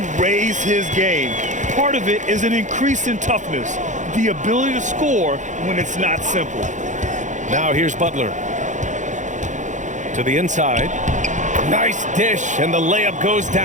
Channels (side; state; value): left; late; 0.36 ms